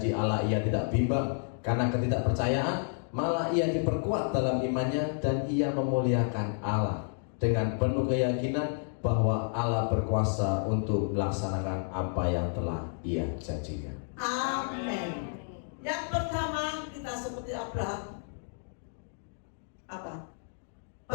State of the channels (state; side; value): silent; right; digital silence